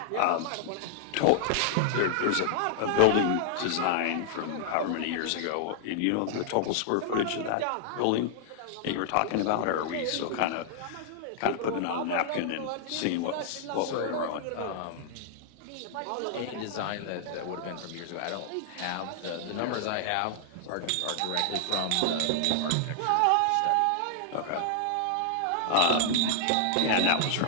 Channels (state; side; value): different; both; correlation -0.01